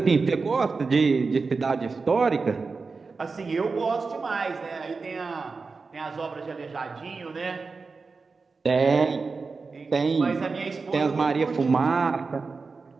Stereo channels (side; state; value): left; quieter; 4.4 dB